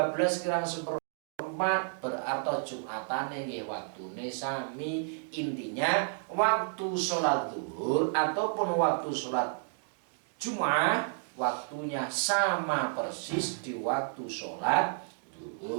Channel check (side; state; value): left; silent; 57 dB below the other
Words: kurang seperempat, berarti Jumatane nggih waktune sami. Intinya waktu sholat zuhur ataupun waktu sholat Jumat waktunya sama persis di waktu sholat